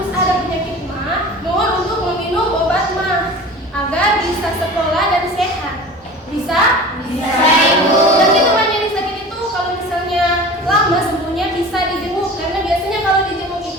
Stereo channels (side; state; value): both; normal; correlation 0.38